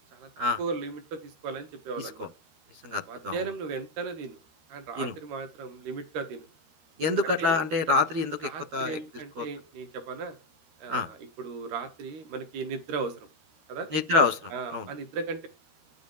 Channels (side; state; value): left; late; 13 ms